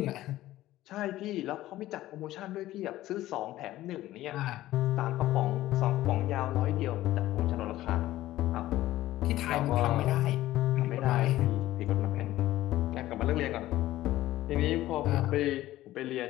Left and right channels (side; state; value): right; quieter; 15.3 dB